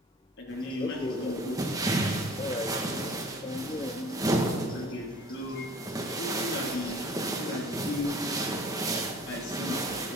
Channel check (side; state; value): both; normal; correlation 0.48